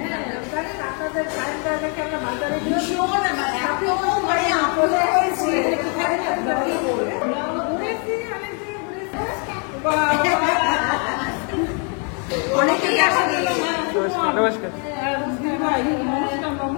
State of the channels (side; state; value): right; quieter; 38.7 dB